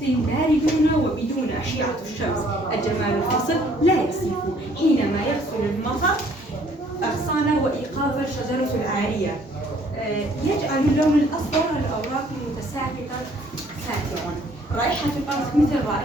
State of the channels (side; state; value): both; normal; correlation 0.61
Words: بارد وبدون أشعة الشمس. الجمال الفصل لا يصف حينما يغسل المطر أغصان وإيقاف الشجرة العارية، يجعل اللون الأصفر الأوراق المتساقطة ساترا. رائحة الأرض مثل